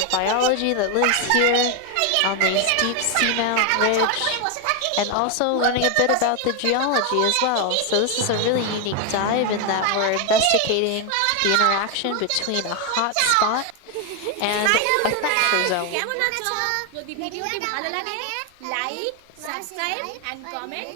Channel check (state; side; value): different; both; correlation 0.01